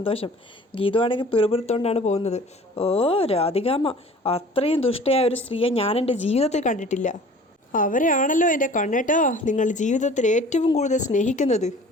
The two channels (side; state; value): both; normal; correlation 0.46